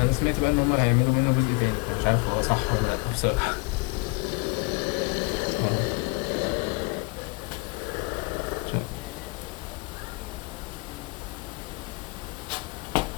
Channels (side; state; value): right; quieter; 30.0 dB